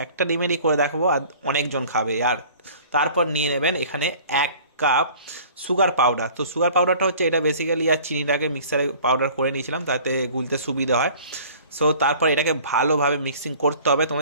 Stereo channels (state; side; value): inverted; both; correlation -0.48